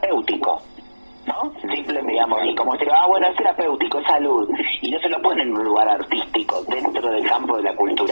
¿no? Simplemente, digamos, y como se bueno, es terapéutico, es salud, y no se lo ponen en un lugar artístico, dentro del campo de la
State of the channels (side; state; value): both; inverted; correlation -1.00